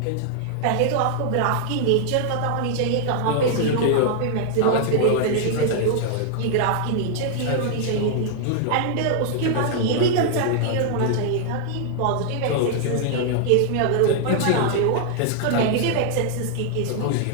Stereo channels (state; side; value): different; both; correlation 0.00